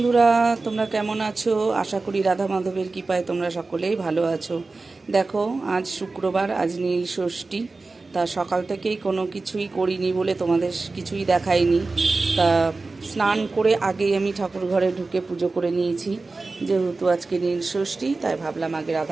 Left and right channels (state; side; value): quieter; left; 3.6 dB